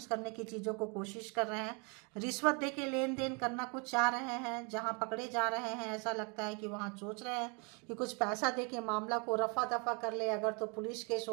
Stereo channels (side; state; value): left; quieter; 33.7 dB